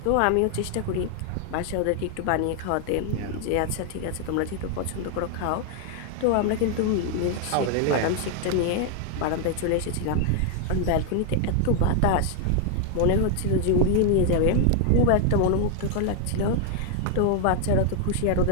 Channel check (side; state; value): both; different; correlation 0.00